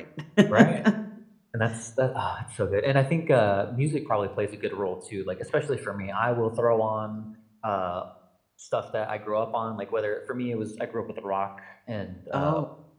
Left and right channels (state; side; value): identical; both; correlation 1.00